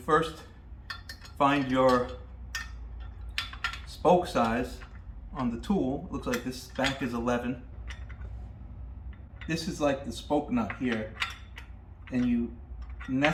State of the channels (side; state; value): both; identical; correlation 1.00